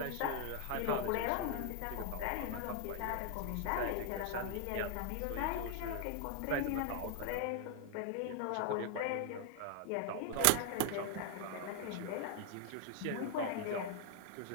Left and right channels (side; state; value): both; different; correlation 0.00